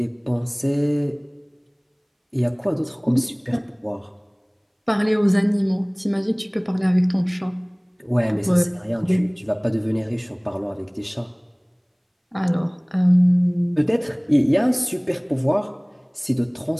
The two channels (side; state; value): both; identical; correlation 1.00